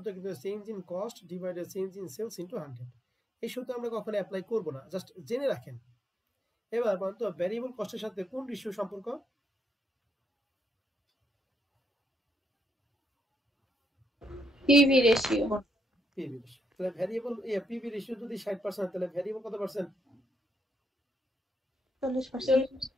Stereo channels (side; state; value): both; normal; correlation 0.78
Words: কিন্তু change in cost divided change in sales into 100। এই সূত্র আমরা কখনো অ্যাপ্লাই করব না, জাস্ট জেনে রাখেন। এবার বলতো ভ্যারিয়েবল কস্টের সাথে কোন রেশিও সম্পর্ক? PV ratio. PV ratio. তাহলে ভ্যারিয়েবল পিভি রেশিও যদি 60% তাহলে ভ্যারিয়েবল কত পার্সেন্ট? 40%.